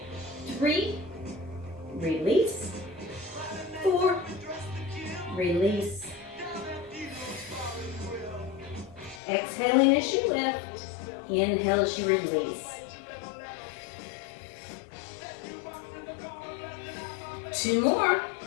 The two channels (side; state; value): right; drops out; at 9.2 s